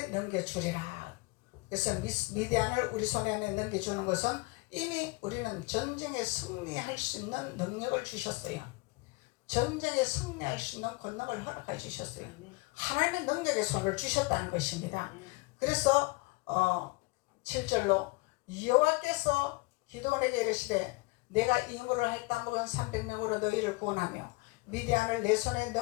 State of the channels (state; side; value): quieter; right; 25.3 dB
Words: 넘겨주리라. 그래서 미디안을 우리 손에 넘겨주는 것은 이미 우리는 전쟁에 승리할 수 있는 능력을 주셨어요. 전쟁에 승리할 수 있는 권능을 허락해 주셨어요. 하나님의 능력의 손을 주셨다는 것입니다. 그래서 7절로 여호와께서 기드온에게 이르시되 내가 임무를 할다 먹은 300명으로 너희를 구원하며 미디안을 내 손에